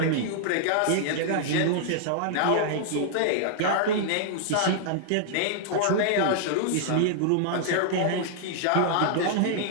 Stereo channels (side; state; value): both; different; correlation -0.01